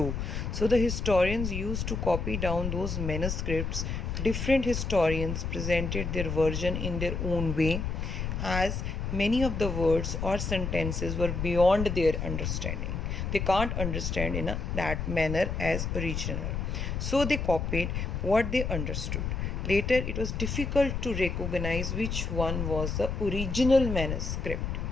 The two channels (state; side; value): noise; left; rumble, 2 dB below the sound